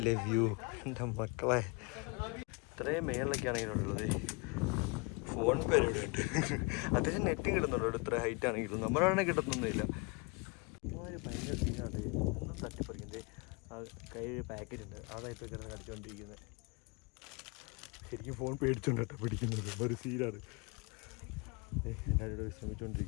വ്യൂ എൻ്റെ മക്കളെ. ഇത്രയും മേളിലൊക്കെയാണ് ഇതിനുള്ളത്. ഫോൺ പേര് ഇവിടെ ഉണ്ട്. അത്യാവശ്യം നെറ്റും കിട്ടുന്നുണ്ട് ഇത്ര ഹൈറ്റ് ആണെങ്കിലും. നമ്മളാണെങ്കിൽ കിട്ടുന്നൊന്നുമില്ല. ഭയങ്കര സീനാണ്. ഒന്നും തട്ടിപ്പറിക്കുന്നത്. ആ കയ്യിൽ പാക്കറ്റ് ഉണ്ട്, അതായിട്ട് കിടന്ന് കടിച്ചുകൊണ്ടിരിക്കുന്നത്. ശരിക്കും ഫോൺ പേടിച്ചോണ്ട് കേട്ടോ പിടിക്കുന്നത്. ഒരു സീനാണ്. എല്ലാവരും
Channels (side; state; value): right; quieter; 28.9 dB